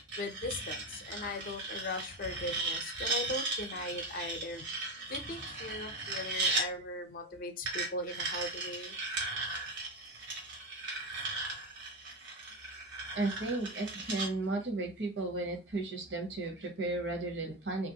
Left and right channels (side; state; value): both; normal; correlation 0.17